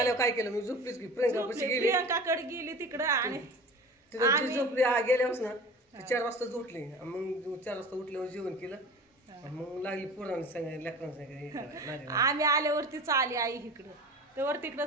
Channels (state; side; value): normal; both; correlation 0.36